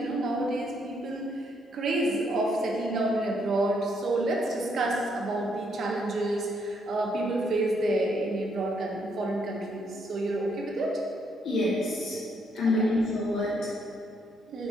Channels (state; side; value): normal; both; correlation 0.73